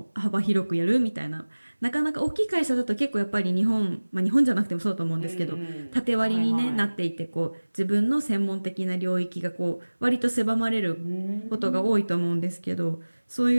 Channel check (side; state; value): both; inverted; correlation -1.00